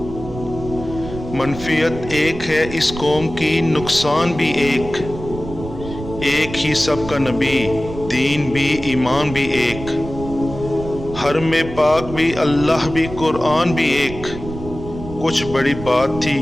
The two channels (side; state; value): right; noise; rumble, 11 dB below the sound